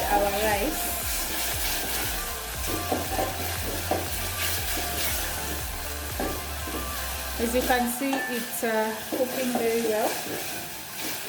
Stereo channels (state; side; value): identical; both; correlation 1.00